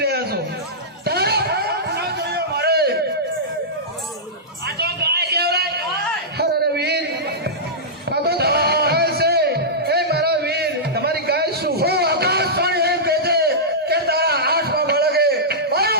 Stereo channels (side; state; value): both; normal; correlation -0.13